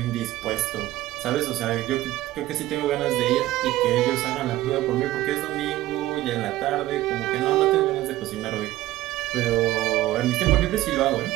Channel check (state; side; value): quieter; left; 15.8 dB